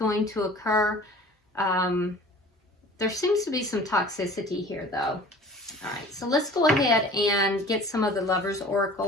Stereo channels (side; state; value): both; normal; correlation 0.45